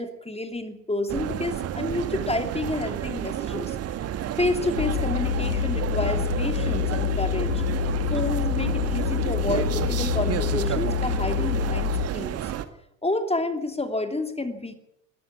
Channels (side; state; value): both; normal; correlation 0.12